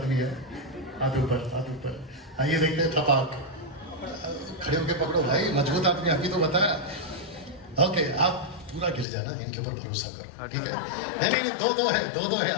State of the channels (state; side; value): drops out; right; at 9.1 s